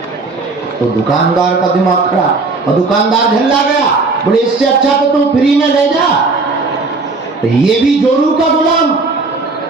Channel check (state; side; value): quieter; left; 3.8 dB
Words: तो दुकानदार का दिमाग खराब, और दुकानदार झल्ला गया। बोले इससे अच्छा तो तुम फ्री में ले जा। तो ये भी जोरू का गुलाम